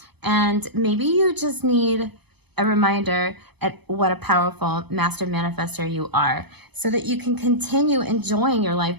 and maybe you just need a reminder at what a powerful master manifester you are, so that you can continue enjoying your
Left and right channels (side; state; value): left; late; 0.98 ms